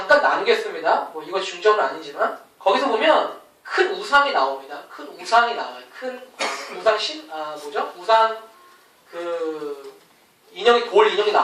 나누겠습니다. 뭐 이거 중점은 아니지만 거기서 보면 큰 우상이 나옵니다. 큰 우상이 나와요. 큰 우상 우상 돌 인형이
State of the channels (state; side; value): identical; both; correlation 1.00